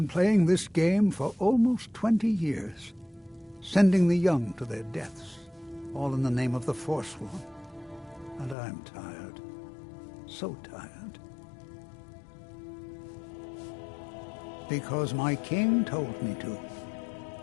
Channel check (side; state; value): right; drops out; at 8.6 s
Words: playing this game for almost 20 years, sending the young to their deaths, all in the name of the Forsworn. And I'm tired. So tired. Because my king told me to.